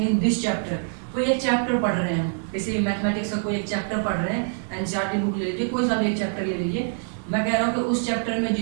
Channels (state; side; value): silent; left; digital silence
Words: in this chapter, कोई एक चैप्टर पढ़ रहे हैं, किसी मैथमेटिक्स का कोई एक चैप्टर पढ़ रहे हैं, एनसीईआरटी बुक ले लीजिए, कोई सा भी एक चैप्टर ले लीजिए। मैं कह रहा हूँ कि उस चैप्टर में